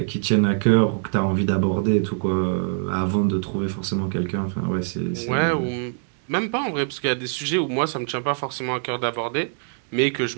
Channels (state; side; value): silent; left; 63 dB below the other